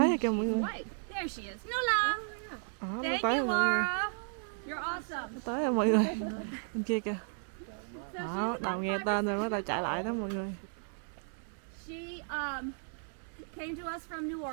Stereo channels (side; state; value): left; silent; 55 dB below the other